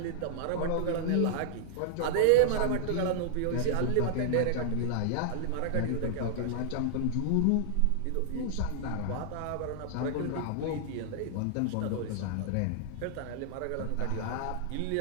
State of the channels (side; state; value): both; different; correlation -0.01